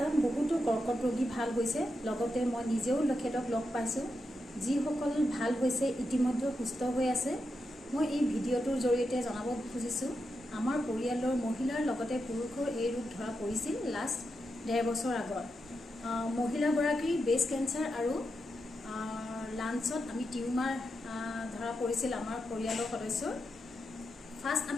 বহুতো কৰ্কট ৰোগী ভাল হৈছে, লগতে মই নিজেও তেখেতক লগ পাইছোঁ। যিসকল ভাল হৈছে ইতিমধ্যে সুস্থ হৈ আছে। মই এই ভিডিঅ'টোৰ জৰিয়তে জনাব খুজিছোঁ, আমাৰ পৰিয়ালৰ মহিলাৰ লগতে পুৰুষৰ এই ৰোগ ধৰা পৰিছিল লাষ্ট 1.5 বছৰ আগত। মহিলাগৰাকীৰ ব্ৰেষ্ট কেঞ্চাৰ আৰু লাঞ্চত আমি টিউমাৰ ধৰা পৰিছিল আমাৰ পৰিয়ালৰ সদস্যৰ। ফাৰ্ষ্ট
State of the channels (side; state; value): both; normal; correlation 0.87